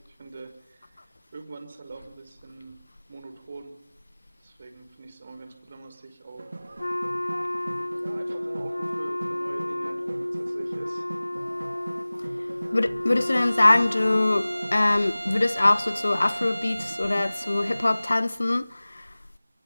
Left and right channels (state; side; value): inverted; both; correlation -0.99